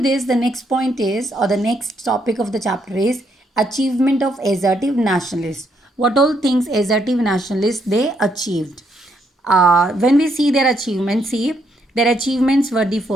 the next point is, or the next topic of the chapter is achievement of assertive nationalists. What all things assertive nationalists they achieved? When we see their achievements, see, their achievements were the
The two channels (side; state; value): both; normal; correlation 0.75